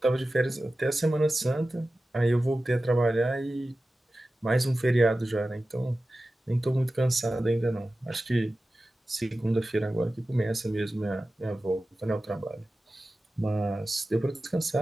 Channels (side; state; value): both; normal; correlation 0.95